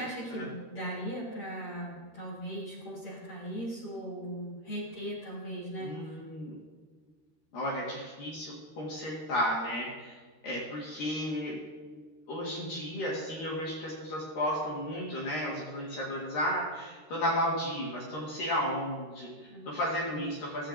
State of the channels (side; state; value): right; late; 13 ms